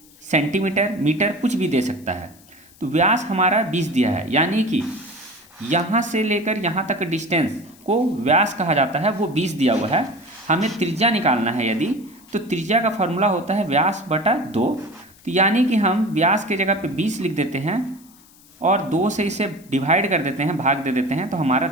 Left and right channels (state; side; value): noise; left; hiss, 26 dB below the sound